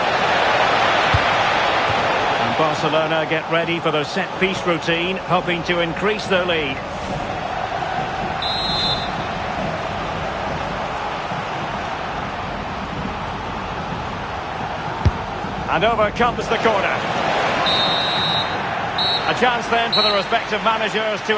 And Barcelona get ready for their set-piece routine, hoping to increase their lead. And over comes the corner. A chance then for the respective managers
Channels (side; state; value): both; identical; correlation 1.00